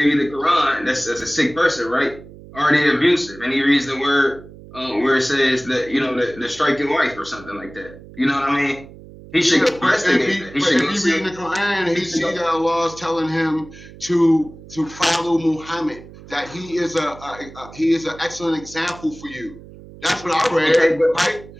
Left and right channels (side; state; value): right; noise; hum, 18 dB below the sound